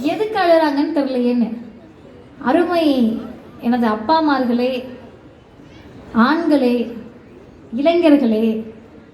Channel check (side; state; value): both; identical; correlation 1.00